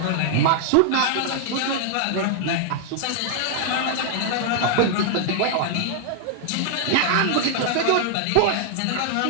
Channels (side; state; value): both; different; correlation -0.01